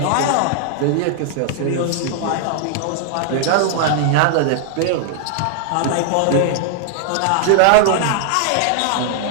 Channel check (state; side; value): different; both; correlation -0.01